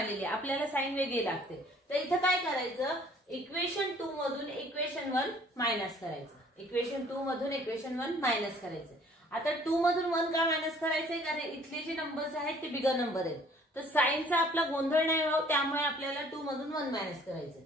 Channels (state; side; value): normal; both; correlation 0.57